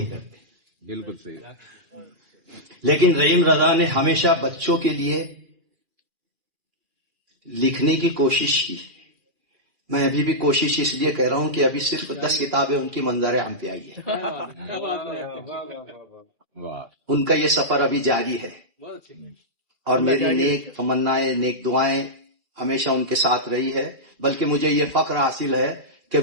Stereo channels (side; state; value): left; late; 2.4 ms